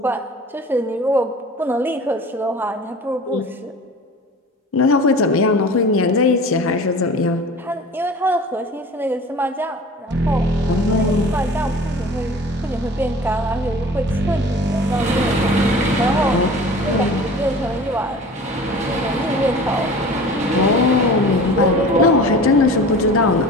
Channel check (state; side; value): normal; both; correlation 0.41